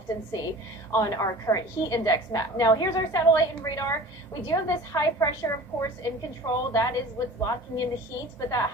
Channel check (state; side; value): normal; both; correlation 0.41